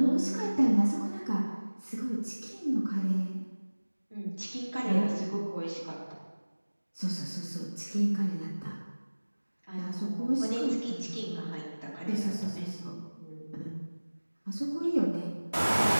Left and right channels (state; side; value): inverted; both; correlation -1.00